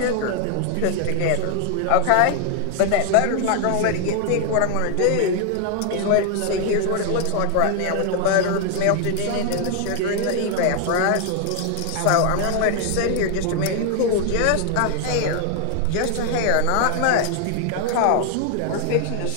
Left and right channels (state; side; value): different; both; correlation 0.00